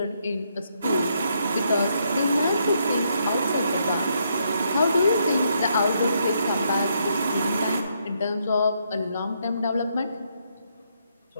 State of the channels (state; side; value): inverted; both; correlation -0.76